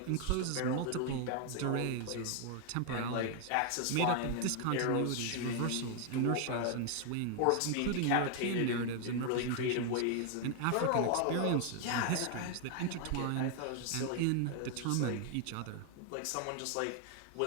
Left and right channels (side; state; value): both; different; correlation 0.00